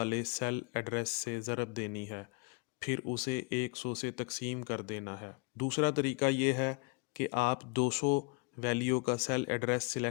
सेल एड्रेस से ज़रब देनी है, फिर उसे 100 से तकसीम कर देना है। दूसरा तरीका ये है कि आप 200 वैल्यू का सेल एड्रेस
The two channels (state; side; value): quieter; right; 31.3 dB